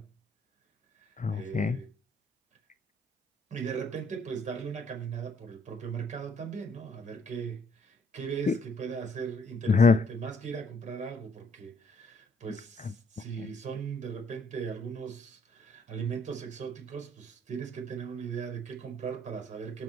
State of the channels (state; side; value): normal; both; correlation 0.66